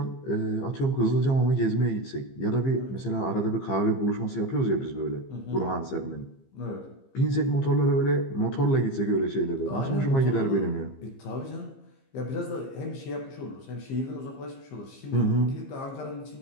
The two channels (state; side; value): late; right; 15 ms